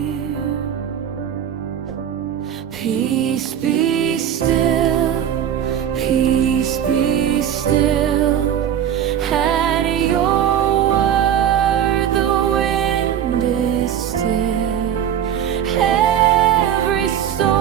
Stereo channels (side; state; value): left; quieter; 9.6 dB